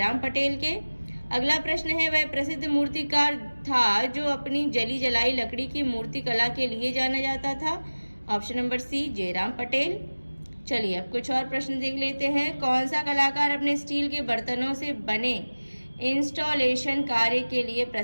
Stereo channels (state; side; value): inverted; both; correlation -1.00